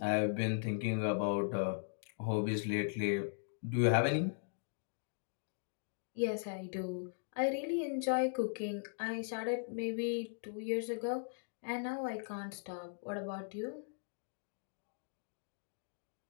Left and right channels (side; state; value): right; silent; digital silence